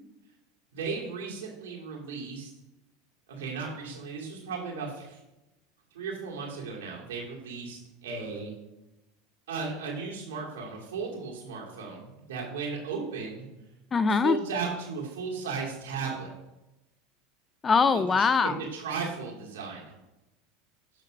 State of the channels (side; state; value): both; normal; correlation 0.53